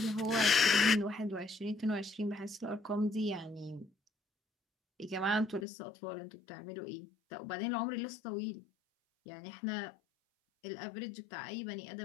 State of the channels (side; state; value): right; drops out; at 5.7 s